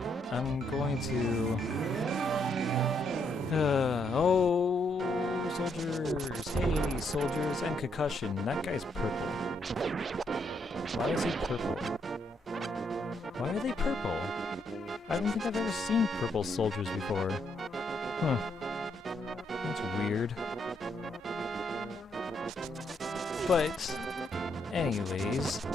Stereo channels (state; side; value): normal; both; correlation 0.75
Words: I'm going to... oh, soldiers! Hey, soldiers, and concussion. That guy's purple. Why is he purple? Why are they purple? I don't think I've ever seen purple soldiers before. Huh. That's weird. But, anyways,